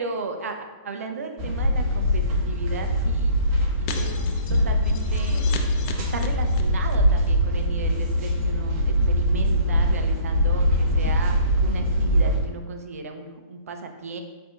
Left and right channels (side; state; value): both; inverted; correlation -0.53